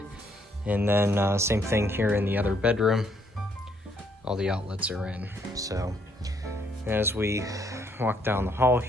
And then same thing here in the other bedroom, all the outlets are in. So as we walk down the hall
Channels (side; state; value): both; normal; correlation 0.70